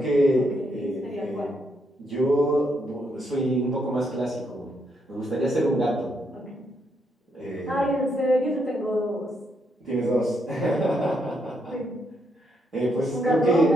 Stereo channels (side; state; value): both; normal; correlation 0.77